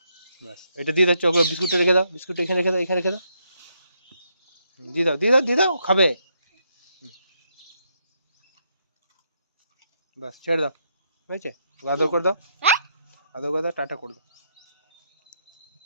ব্যাস, এটা দিয়ে দাও, চকলেট বিস্কুটটা রেখে দাও, বিস্কুট এখানে রেখে দাও, এখানে রেখে দাও, দিয়ে দাও, খাবে। ব্যাস, ছেড়ে দাও, হয়েছে, আদর করে দাও, আদর করে দাও, টাটা করে দাও,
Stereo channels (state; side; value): inverted; both; correlation -0.77